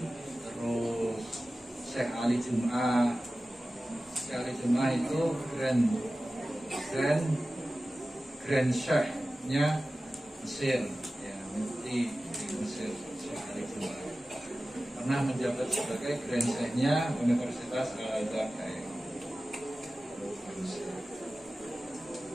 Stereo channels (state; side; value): normal; both; correlation 0.96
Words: terus Syekh Ali Jum'ah. Syekh Ali Jum'ah itu Grand Syekh-nya Mesir, ya, mufti di Mesir. Syekh Ali Jum'ah pernah menjabat sebagai Grand Syekh-nya Universitas Al-Azhar.